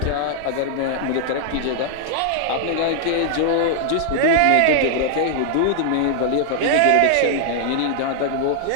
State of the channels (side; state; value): both; different; correlation -0.01